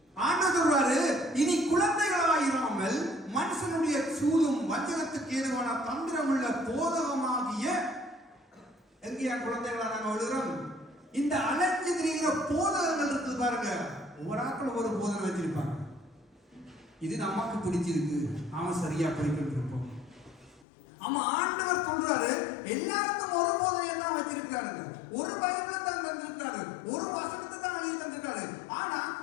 ஆண்டவர் சொல்றாரு, இனி குழந்தைகளாயிராமல் மனுஷனுடைய சூதும் வஞ்சகத்துக்கு ஏதுவான தந்திரமுள்ள போதகமாகிய எங்கேயா குழந்தைகளா நாங்க விழுகிறோம்? இந்த அலைஞ்சு திரிகிற போதகங்கள் இருக்கு பாருங்க. ஒவ்வொரு ஆட்கள் ஒரு போதனை வச்சிருப்பாங்க. இது நமக்கு பிடிச்சிருக்கு, அவன் சரியா படிக்கிட்டு இருப்போம். ஆமா, ஆண்டவர் சொல்றாரு எல்லாருக்கும் ஒரு போதனையை தான் வச்சிருக்கிறாருங்க. ஒரு பைபிளை தான் தந்திருக்காரு, ஒரு வசனத்தை தான் எழுதி தந்திருக்காரு. ஆனா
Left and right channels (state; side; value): drops out; right; at 20.7 s